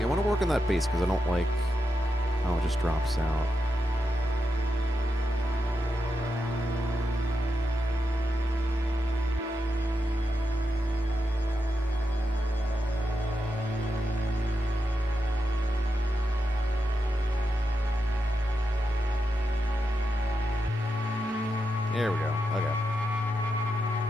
I want to work on that bass because I don't like how it just drops out. There we go. Okay.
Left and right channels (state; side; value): normal; both; correlation 0.86